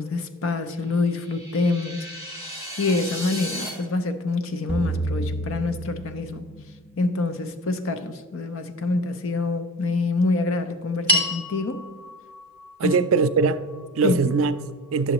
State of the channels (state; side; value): normal; both; correlation 0.40